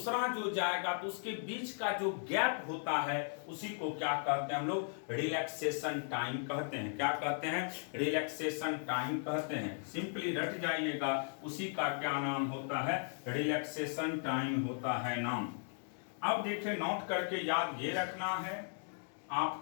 जो जाएगा तो उसके बीच का जो गैप होता है उसी को क्या कहते हैं हम लोग, रिलैक्सेशन टाइम कहते हैं। क्या कहते हैं, रिलैक्सेशन टाइम कहते हैं। सिंपली रट जाइएगा, उसी का क्या नाम होता है, रिलैक्सेशन टाइम होता है नाम। अब देखिए नोट करके याद ये रखना है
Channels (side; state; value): right; silent; 53 dB below the other